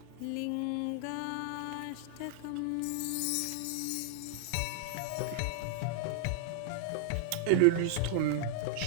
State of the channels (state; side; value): different; both; correlation 0.00